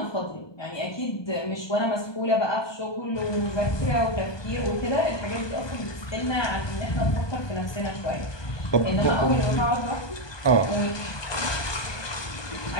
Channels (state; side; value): late; right; 1.2 ms